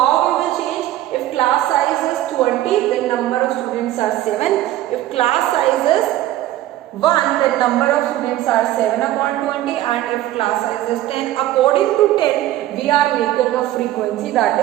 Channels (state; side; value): quieter; left; 14.3 dB